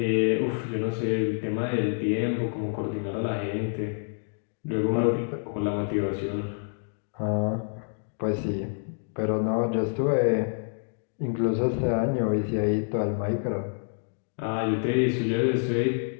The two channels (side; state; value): right; silent; digital silence